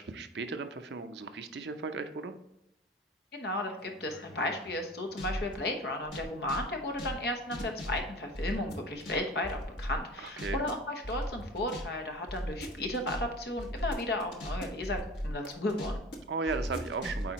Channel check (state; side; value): normal; both; correlation 0.38